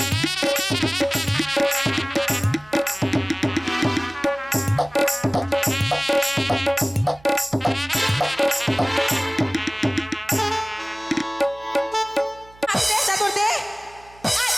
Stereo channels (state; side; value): noise; right; hum, 25 dB below the sound